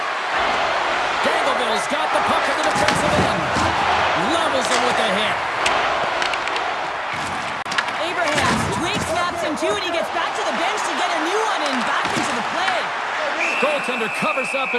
Dangleville's got the puck at the defensive end. Levels him with a hit. Abrahams, Drake snaps him too, and he gets back to the bench to get a new one and back into the play. Goaltender covers up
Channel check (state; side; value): identical; both; correlation 1.00